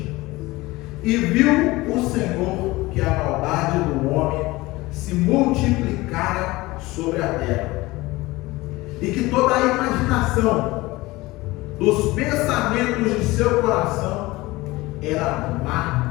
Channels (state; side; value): quieter; right; 20.4 dB